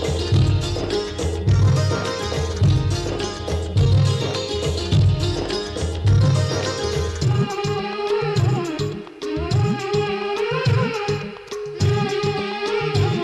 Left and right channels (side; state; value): both; identical; correlation 1.00